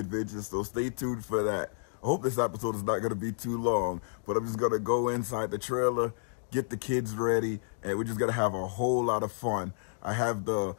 so stay tuned for that. I hope this episode is not gonna be too long, but I'm just gonna go inside the trailer, get the kids ready, and we're just gonna have a whole lot of fun. I have the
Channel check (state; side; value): silent; right; digital silence